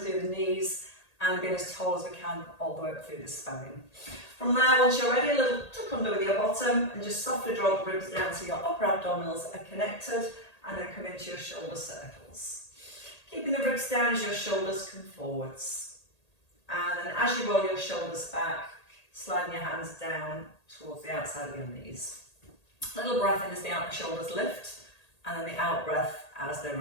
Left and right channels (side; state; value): right; late; 1.8 ms